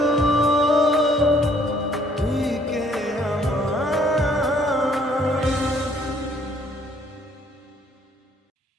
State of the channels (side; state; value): both; normal; correlation 0.63